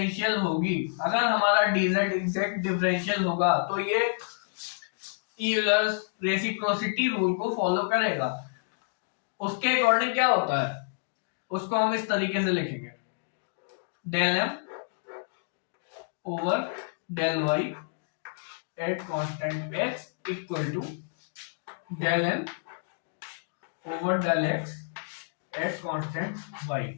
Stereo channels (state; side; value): silent; right; digital silence